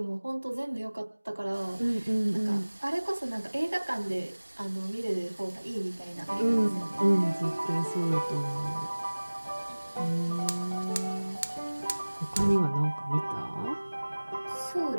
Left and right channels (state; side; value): inverted; both; correlation -1.00